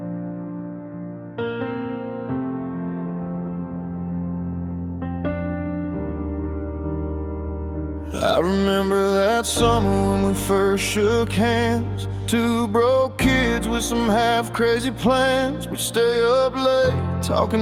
I remember that summer when we first shook hands. Two broke kids with some half-crazy plans. We'd stay up late,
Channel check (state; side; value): identical; both; correlation 1.00